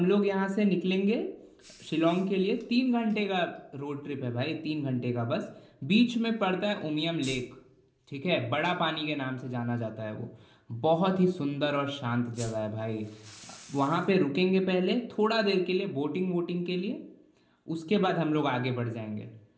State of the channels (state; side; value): identical; both; correlation 1.00